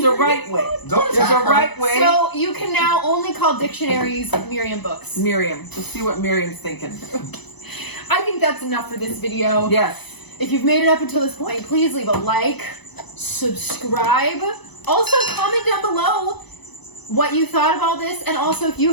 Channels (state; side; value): late; right; 0.99 ms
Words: right way. don't There's a attack her. right way. So you can now only call dictionaries Miriam books. Miriam. Let's see what Miriam's thinking. I think that's enough for this video. Yes. If you've made it up until this point, please leave a like, subscribe. Also, comment down below what you thought of all this, and also if you